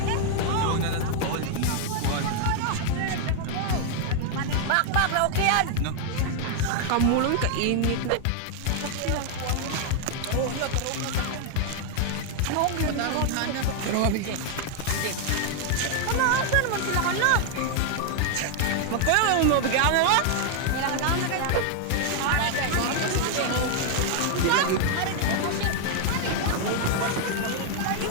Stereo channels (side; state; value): both; different; correlation 0.00